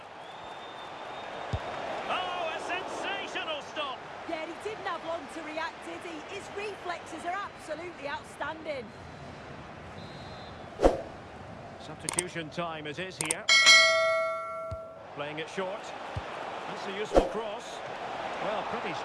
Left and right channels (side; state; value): both; identical; correlation 1.00